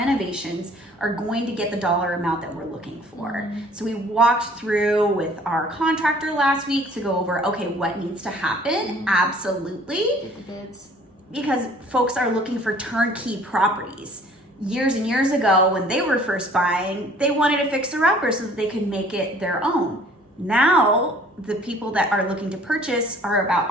are going to get the dollar amount that we're looking for. So we walked through with our contractor last week to go over, okay, what needs to happen? Absolutely. Get the bids. Because folks are looking for turnkey properties. Years and years ago, when they were first buying, they wanted a fixer-upper so that they could make it their own. Now, the people that are looking to purchase are about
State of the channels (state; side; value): normal; both; correlation 0.54